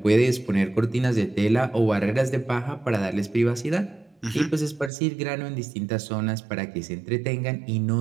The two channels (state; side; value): drops out; left; at 4.9 s